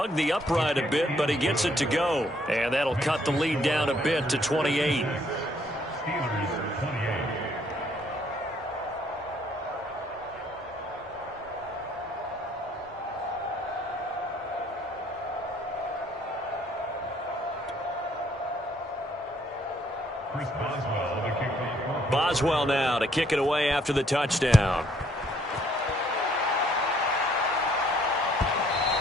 the upright a bit, but he gets it to go. And that'll cut the lead down a bit to 28. Boswell now to kick it away after the touchdown.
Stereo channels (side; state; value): both; normal; correlation 0.66